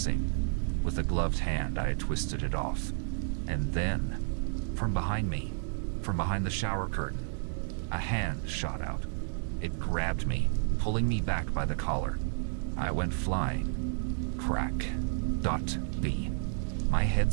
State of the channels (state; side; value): silent; left; digital silence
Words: With a gloved hand, I had twisted it off. And then, from behind me, from behind the shower curtain, a hand shot out. It grabbed me, pulling me back by the collar. I went flying. Crack. Dot. B. My head